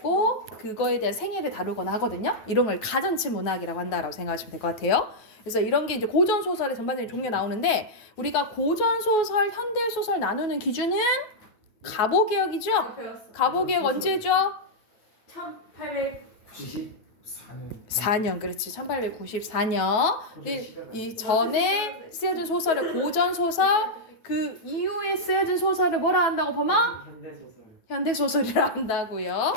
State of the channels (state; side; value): late; right; 9.3 ms